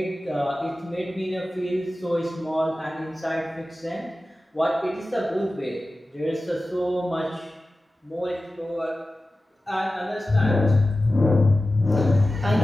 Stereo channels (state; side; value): normal; both; correlation 0.95